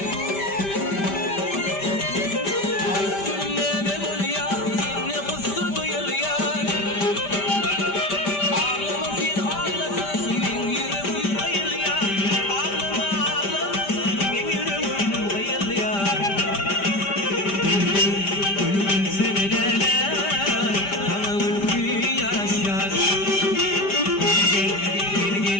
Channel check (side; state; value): right; late; 5.1 ms